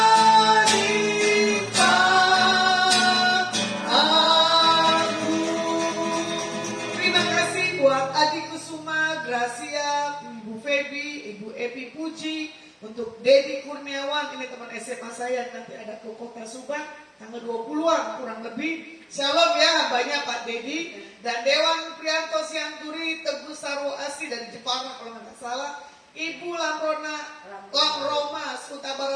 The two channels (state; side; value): identical; both; correlation 1.00